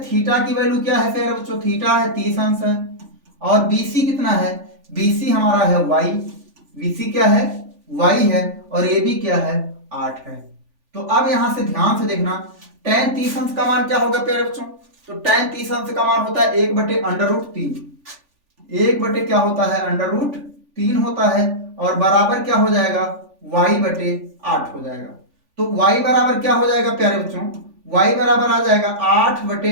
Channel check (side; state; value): left; late; 3.4 ms